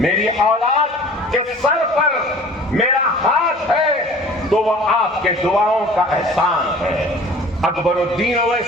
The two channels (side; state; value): both; normal; correlation 0.46